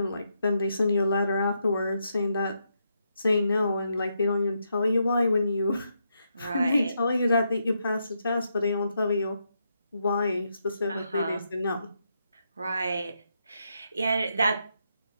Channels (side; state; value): both; inverted; correlation -0.80